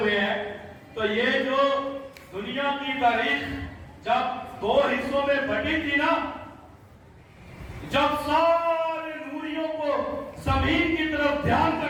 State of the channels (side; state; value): both; identical; correlation 1.00